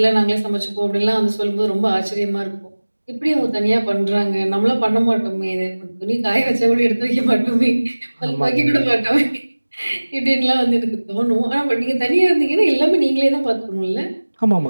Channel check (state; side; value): inverted; both; correlation -1.00